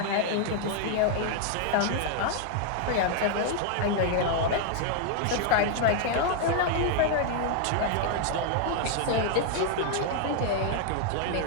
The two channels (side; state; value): both; different; correlation 0.00